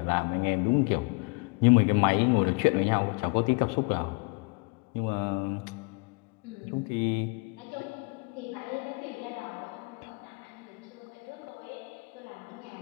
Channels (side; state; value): right; quieter; 31.5 dB